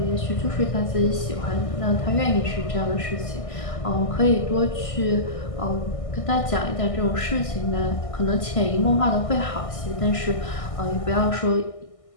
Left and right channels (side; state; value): right; late; 1.6 ms